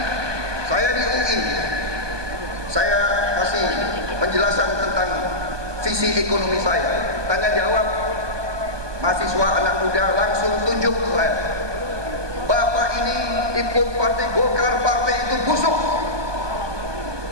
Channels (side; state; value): left; late; 1.2 ms